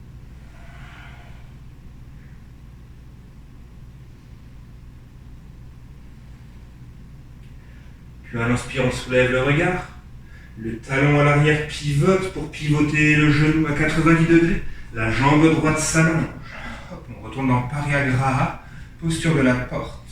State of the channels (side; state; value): both; identical; correlation 1.00